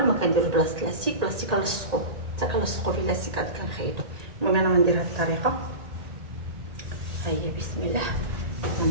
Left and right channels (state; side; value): late; left; 1.8 ms